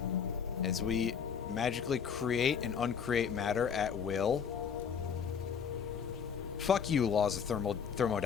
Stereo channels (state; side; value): quieter; right; 7.0 dB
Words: As we magically create and uncreate matter at will. Fuck you, laws of